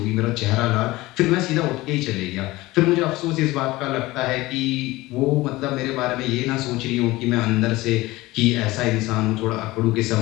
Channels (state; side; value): quieter; right; 19.4 dB